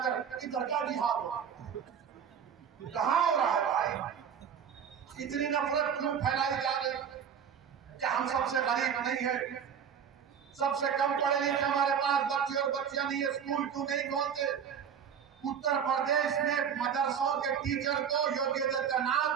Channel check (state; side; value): quieter; left; 7.8 dB